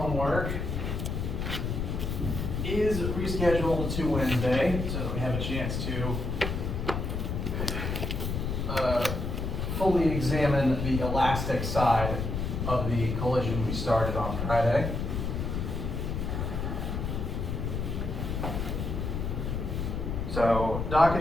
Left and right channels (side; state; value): left; noise; rumble, 2 dB below the sound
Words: is rescheduled to Wednesday, so that we have a chance to fully examine the elastic side of the collision we started on Friday. So,